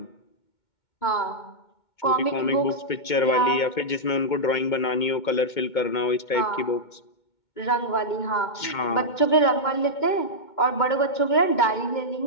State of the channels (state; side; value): late; right; 2.2 ms